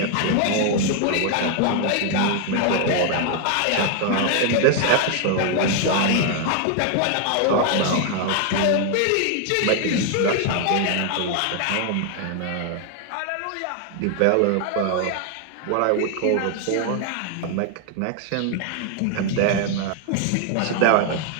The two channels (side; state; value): both; different; correlation 0.00